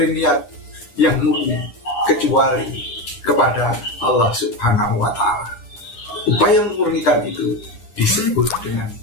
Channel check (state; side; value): late; right; 9.8 ms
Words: niat yang murni kecuali kepada Allah Subhanahu wa Ta'ala. Upaya memurnikan itu disebut dengan